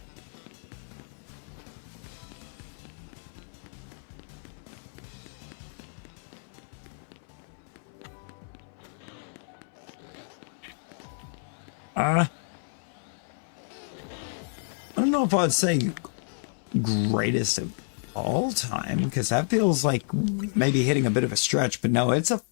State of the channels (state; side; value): silent; right; 58 dB below the other